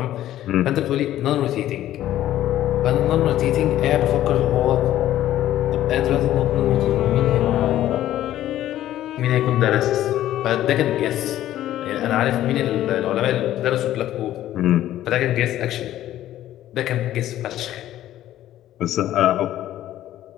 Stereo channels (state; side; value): quieter; right; 13.1 dB